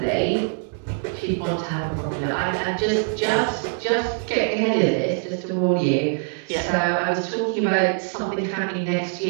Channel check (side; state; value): left; silent; 56 dB below the other